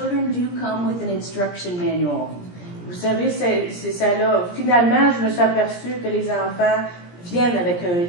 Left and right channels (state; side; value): late; right; 17 ms